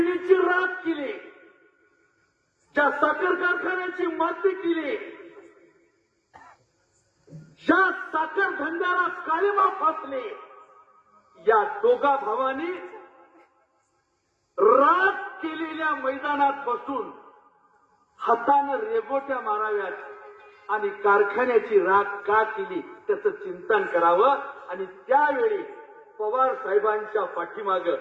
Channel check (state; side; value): identical; both; correlation 1.00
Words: राख केली, ज्या साखर कारखान्याची माती केली, ज्या साखर धंद्याला काळिमा फासले, या दोघा भावांनी राख केलेल्या मैदानात बसून हातानं रेगोट्या माराव्यात आणि कारखान्याची राख का केली त्याचं चिंतन करावं. आणि त्यावेळी पवार साहेबांच्या पाठीमागं